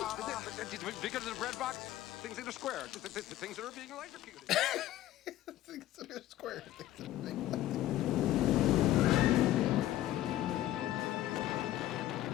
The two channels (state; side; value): quieter; right; 14.0 dB